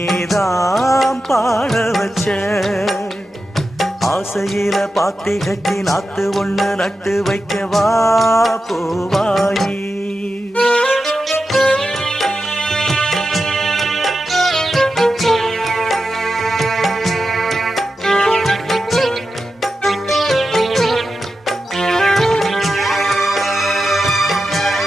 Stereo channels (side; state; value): both; normal; correlation 0.91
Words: பாட வச்ச. ஆசையில பாத்தி கட்டி நாத்து ஒண்ணு நட்டு வைக்கவா பூவாயி.